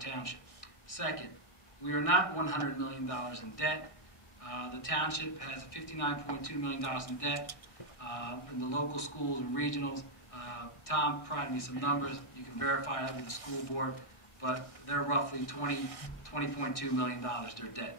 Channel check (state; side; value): late; right; 1.6 ms